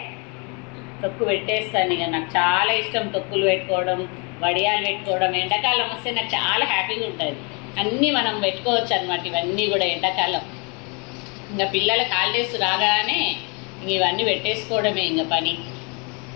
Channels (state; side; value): quieter; right; 32.9 dB